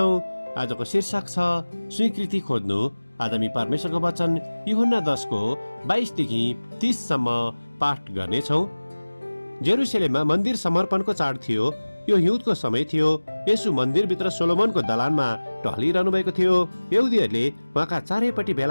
आजको शीर्षक छ स्वीकृति खोज्नु। आज हामी परमेश्वरको वचन यूहन्ना 10को 22 देखि 30 सम्म पाठ गर्नेछौँ। जेरुसलेममा मन्दिर समर्पणको चाड थियो। यो हिउँदको समय थियो। यसु मन्दिरभित्र सोलोमनको दलानमा टहलिरहनु भएको थियो। यहुदीहरूले उहाँका चारैपट्टि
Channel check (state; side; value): inverted; both; correlation -1.00